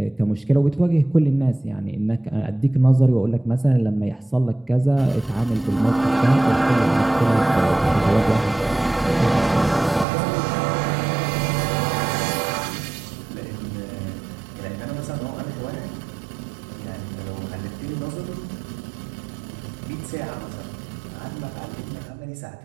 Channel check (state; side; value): drops out; left; at 10.1 s